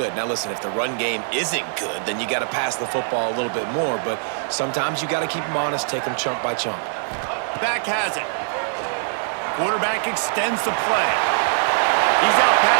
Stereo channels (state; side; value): silent; left; digital silence